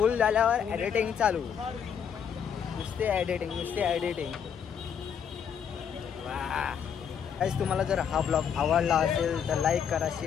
झाल्यावर एडिटिंग चालू. नुसते एडिटिंग. वा गाईस, तुम्हाला जर हा ब्लॉग आवडला असेल तर लाईक करा,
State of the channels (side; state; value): right; quieter; 7.8 dB